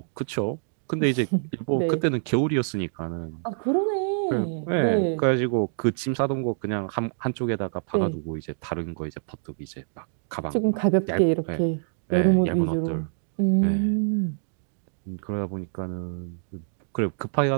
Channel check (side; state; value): left; silent; digital silence